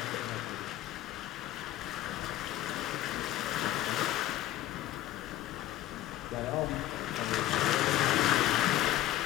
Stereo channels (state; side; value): quieter; right; 14.2 dB